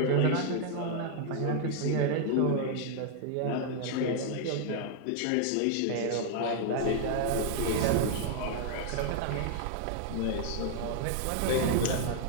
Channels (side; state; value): both; different; correlation 0.00